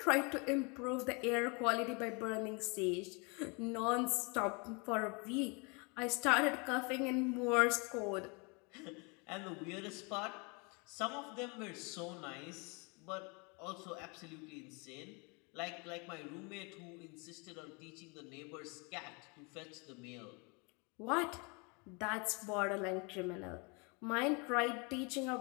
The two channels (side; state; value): right; quieter; 31.4 dB